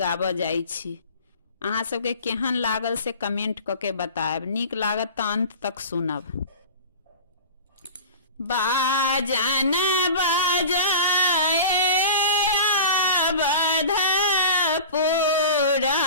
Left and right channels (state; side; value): inverted; both; correlation -0.36